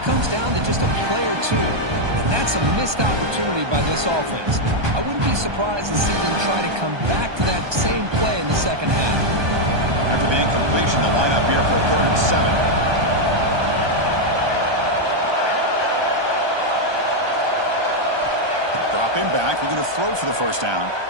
down to just a play or two. And that's a missed opportunity by this offense. I wouldn't be surprised to see them try to come back to that same play in the second half. After the incompletion, the lineup here for 3rd and 7. Dropping back, looking to throw for the first down.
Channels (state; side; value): late; left; 1.2 ms